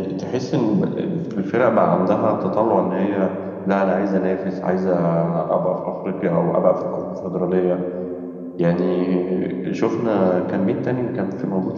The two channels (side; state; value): both; identical; correlation 1.00